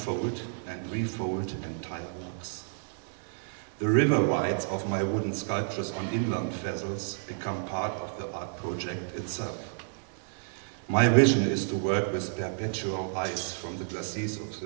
and refold entire logs. The river rides of my wooden sculptures on inland vessels become part of the art project itself. My vision is to work with perpetual ice from the glaciers of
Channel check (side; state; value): left; silent; digital silence